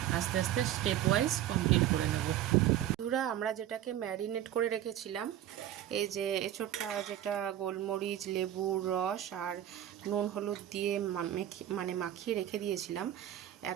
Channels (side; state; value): left; quieter; 11.8 dB